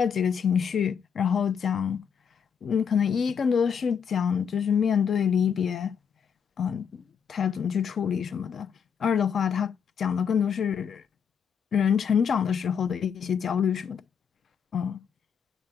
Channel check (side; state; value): right; quieter; 7.2 dB